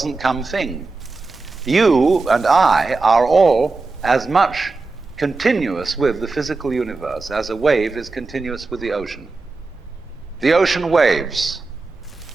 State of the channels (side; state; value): left; quieter; 3.7 dB